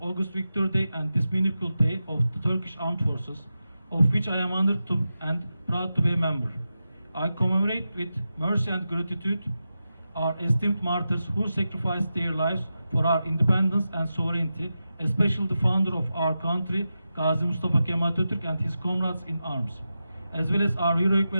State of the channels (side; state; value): both; inverted; correlation -0.91